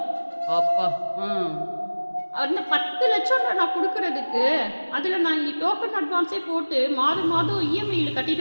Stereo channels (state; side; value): inverted; both; correlation -1.00